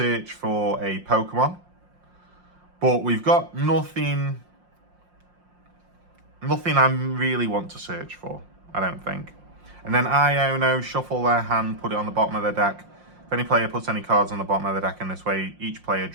for a Pokemon, but we've got nothing I really want to search for, I don't think. And then Iono, shuffle their hand, put it on the bottom of their deck. If any player puts any cards on the bottom of the deck in this way, each player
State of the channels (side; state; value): left; late; 5.7 ms